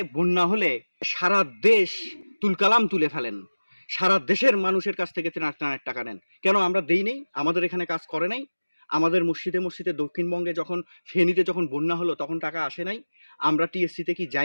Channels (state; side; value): inverted; both; correlation -1.00